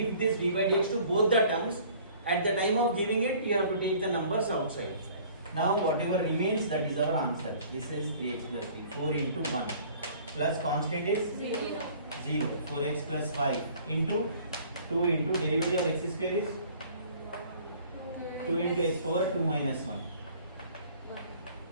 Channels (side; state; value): both; inverted; correlation -0.52